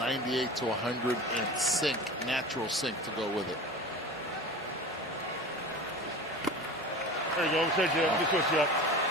to 100 and sink, natural sink to go with it. There you go. Set you up. Just switch you up.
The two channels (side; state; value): both; normal; correlation 0.34